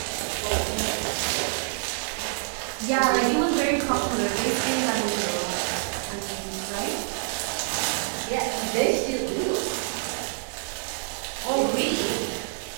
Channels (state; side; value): silent; left; digital silence